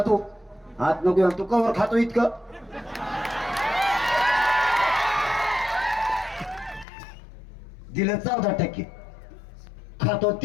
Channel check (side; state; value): right; drops out; at 6.9 s